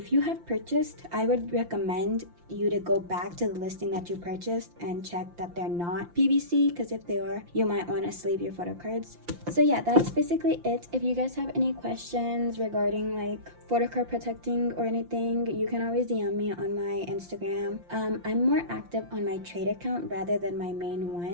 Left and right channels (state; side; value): late; left; 5.8 ms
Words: you have purchased, I would recommend you to go back to the listing that you purchased and check that they're not PVC, because if they are, you might want to sleeve your photo cards. So yeah, that's basically it. If you guys have any questions regarding like photo card protecting or anything, you can always DM me on my Instagram. I'm more active on my trade account rather than my main